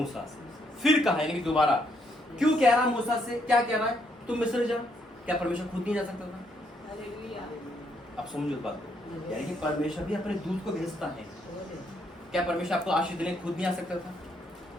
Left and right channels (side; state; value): both; normal; correlation 0.73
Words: से। फिर कहा यानी कि दोबारा। क्यों कह रहा मूसा से, क्या कह रहा है, तुम मिस्र जाओ। क्या परमेश्वर खुद नहीं जा सकता था। अब समझो बात को, यानी कि परमेश्वर भी अपने दूत को भेजता है। क्या परमेश्वर आपको आशीष देने खुद नहीं आ सकता था।